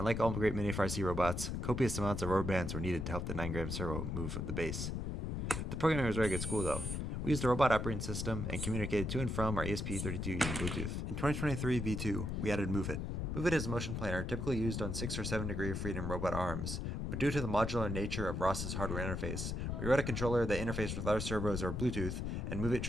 like all great Mini FRC robots, copious amounts of rubber bands were needed to help the 9-gram servo move the base. The programming was very good school though. We used a robot operating system and communicated to and from our ESP32 using Bluetooth. In 2023 V2, we added Move It. Move It is a motion planner typically used on 6 or 7 degree of freedom robot arms, but due to the modular nature of Ross's hardware interface, we wrote a controller that interfaced with other servos or Bluetooth, and Move It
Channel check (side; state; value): left; noise; rumble, 2 dB below the sound